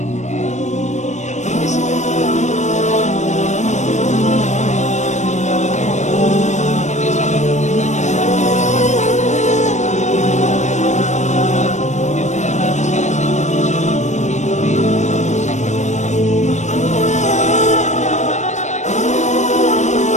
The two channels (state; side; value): late; right; 0.34 ms